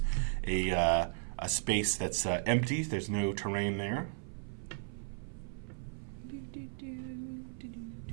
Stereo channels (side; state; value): left; silent; 54 dB below the other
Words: a space that's empty. There's no terrain there.